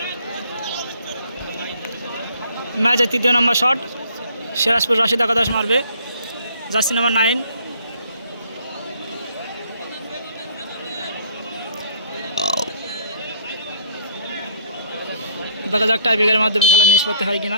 ম্যাচের তৃতীয় নম্বর শট সিরাজপুর রাশিদ একাদশ মারবে জার্সি নাম্বার 9। দেখা যাক টাইব্রেকারের মাধ্যমে খেলা নিষ্পত্তি হয়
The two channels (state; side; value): inverted; both; correlation -0.60